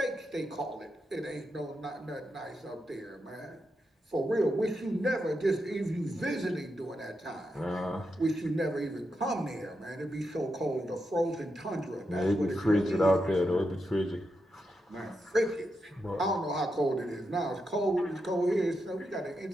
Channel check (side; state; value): both; normal; correlation 0.85